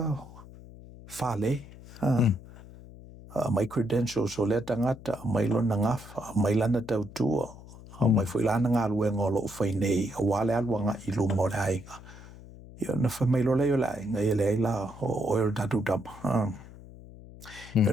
whale. Mai credentials o le tangata, mai lona ngafa, mai lana tautua, mai fuilana ngā luenga o loo whainei, a wale aluanga i luma o le ainga. Ia na mai lola i o le ainga, i le aila o el tatu tama. Ia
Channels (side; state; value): left; noise; hum, 18 dB below the sound